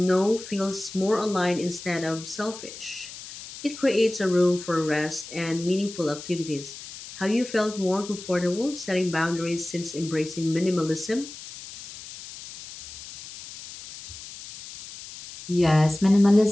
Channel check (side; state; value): left; noise; hiss, 14 dB below the sound